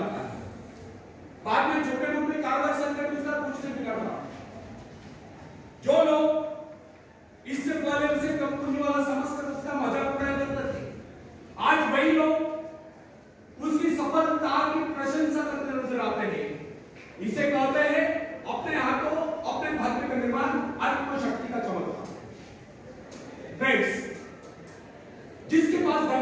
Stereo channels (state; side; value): identical; both; correlation 1.00